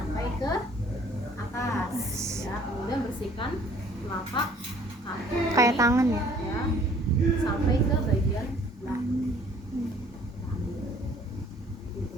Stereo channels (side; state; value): both; normal; correlation 0.56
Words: ke atas ya. Kemudian bersihkan telapak kaki Kayak tangan ya. sampai ke bagian belakang.